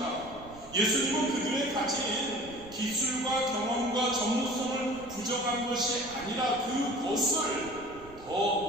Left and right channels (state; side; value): noise; right; rumble, 20 dB below the sound